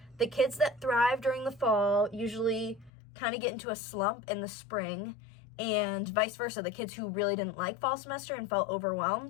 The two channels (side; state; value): right; drops out; at 2.9 s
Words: The kids that thrive during the fall usually kind of get into a slump in the spring, and vice versa. The kids who really didn't like fall semester and felt